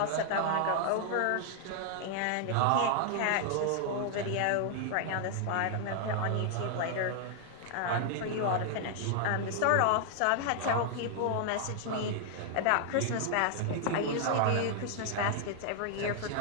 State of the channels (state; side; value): different; both; correlation 0.00